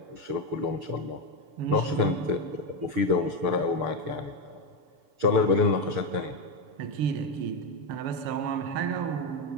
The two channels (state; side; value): late; left; 6.9 ms